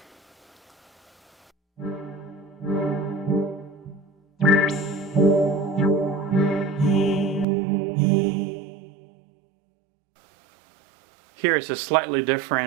here is a slightly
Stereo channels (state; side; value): drops out; left; at 7.5 s